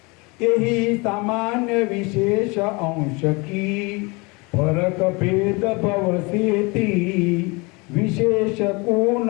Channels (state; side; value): quieter; right; 27.6 dB